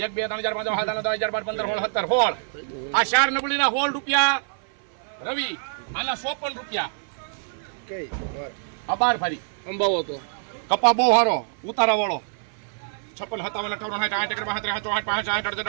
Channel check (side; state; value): left; silent; 56 dB below the other